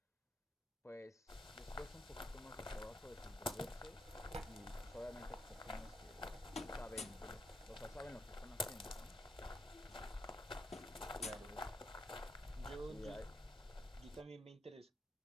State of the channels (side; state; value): both; normal; correlation 0.80